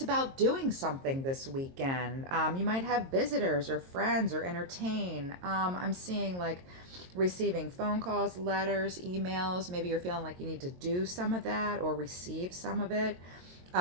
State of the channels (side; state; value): left; late; 22 ms